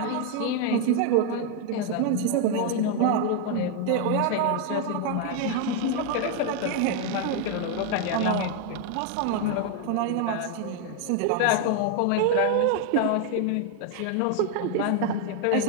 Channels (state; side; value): different; both; correlation 0.01